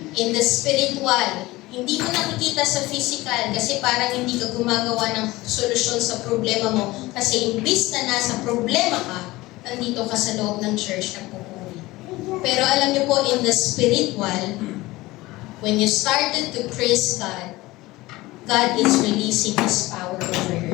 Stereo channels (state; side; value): quieter; right; 19.5 dB